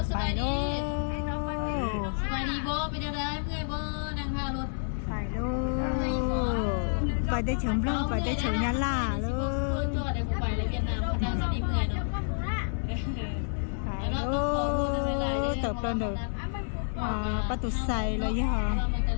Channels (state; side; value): silent; right; digital silence